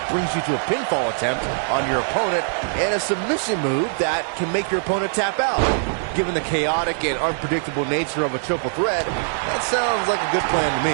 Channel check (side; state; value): left; silent; 64 dB below the other